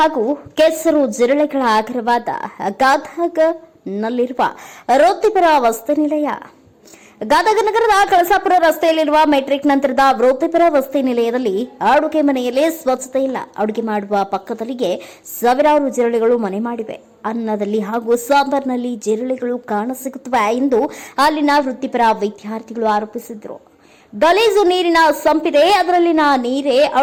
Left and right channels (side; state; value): both; identical; correlation 1.00